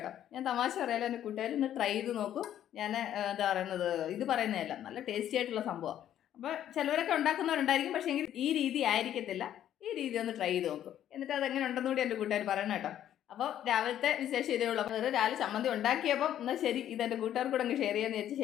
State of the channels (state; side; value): quieter; right; 11.1 dB